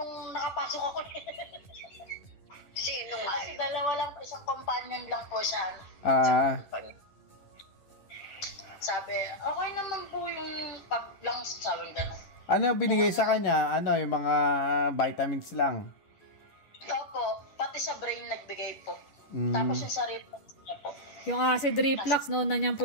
nakapasok ako. Sino nga Kasi yun? dalawa lang, isang companion lang po siya. Sabi, okay naman po yung pag-lungs, sabi gano'n. Ano binigay sa kanya? Ano, yung mga vitamins lang? Opo, pati sa brain nagbigay po. Tapos yung sa reflux niya po. Yung acid reflux, noon na niyang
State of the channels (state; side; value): late; right; 11 ms